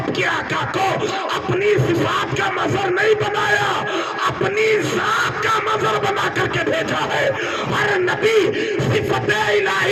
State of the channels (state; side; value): identical; both; correlation 1.00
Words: کے آقا کو اپنی صفات کا مظہر نہیں بنایا، اپنی ذات کا مظہر بنا کر کے بھیجا ہے. ہر نبی صفت